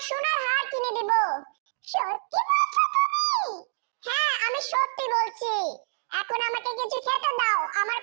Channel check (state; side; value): silent; left; digital silence